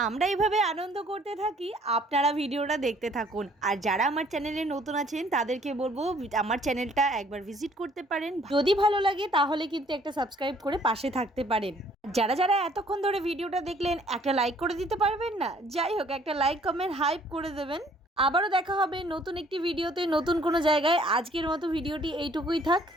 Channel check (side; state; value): both; normal; correlation 0.60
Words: আমরা এইভাবে আনন্দ করতে থাকি, আপনারা ভিডিওটা দেখতে থাকুন। আর যারা আমার চ্যানেলে নতুন আছেন তাদেরকে বলবো আমার চ্যানেলটা একবার ভিজিট করতে পারেন, যদি ভালো লাগে তাহলে কিন্তু একটা সাবস্ক্রাইব করে পাশে থাকতে পারেন। যারা যারা এতক্ষণ ধরে ভিডিওটা দেখলেন একটা লাইক করে দিতে পারবেন না? যাই হোক, একটা লাইক কমেন্ট হাইপ করে দেবেন। আবারও দেখা হবে নতুন একটি ভিডিওতে, নতুন কোনো জায়গায়। আজকের মতো ভিডিওটি এইটুকুই থাক,